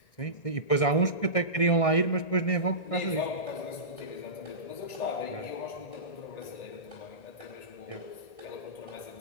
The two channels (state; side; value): late; right; 1.6 ms